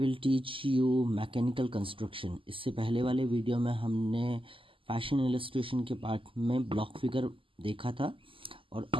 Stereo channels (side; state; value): left; late; 0.25 ms